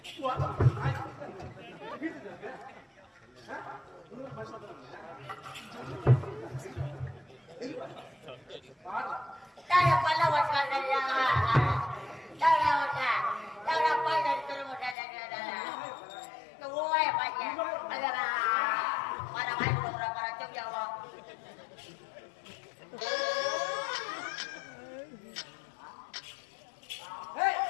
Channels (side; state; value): right; drops out; at 15.0 s